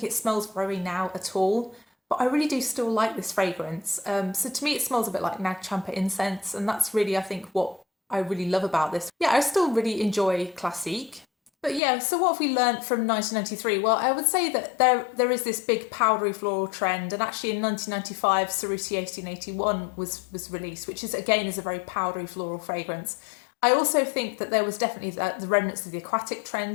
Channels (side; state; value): right; drops out; at 11.8 s